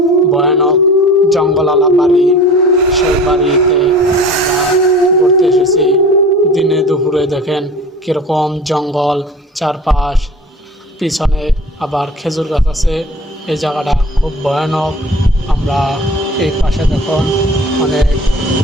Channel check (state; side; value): normal; both; correlation 0.40